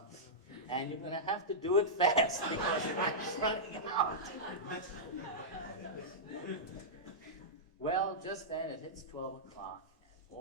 And you're going to have to do it fast because time's running out. Well, just then it hits 12 o'clock, and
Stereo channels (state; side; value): normal; both; correlation -0.12